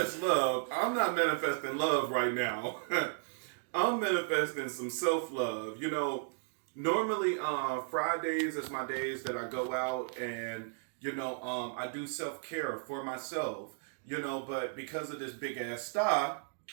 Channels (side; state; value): left; silent; digital silence